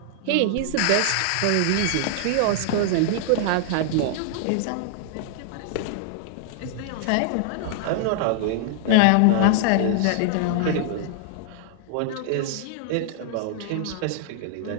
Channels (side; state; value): both; different; correlation 0.00